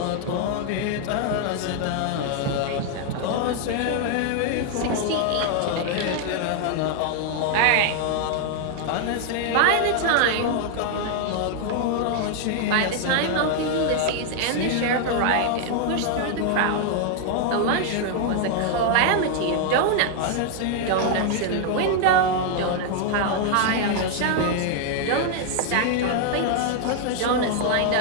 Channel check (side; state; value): both; different; correlation 0.00